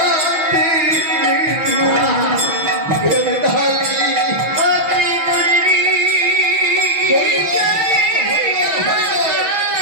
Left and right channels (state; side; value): late; left; 6.1 ms